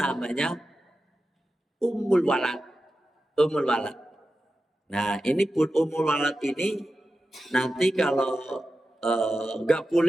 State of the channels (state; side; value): normal; both; correlation 0.92